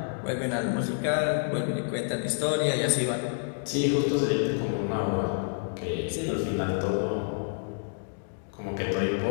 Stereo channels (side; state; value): right; silent; digital silence